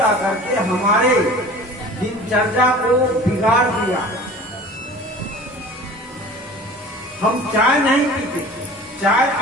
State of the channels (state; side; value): normal; both; correlation 0.42